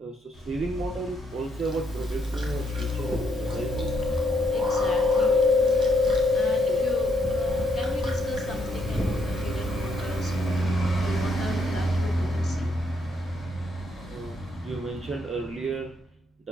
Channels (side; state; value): both; normal; correlation 0.74